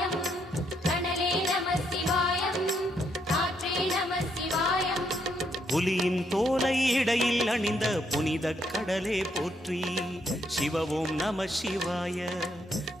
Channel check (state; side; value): normal; both; correlation 0.75